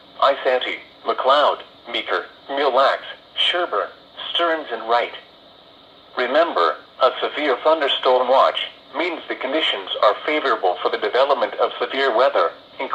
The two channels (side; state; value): both; identical; correlation 1.00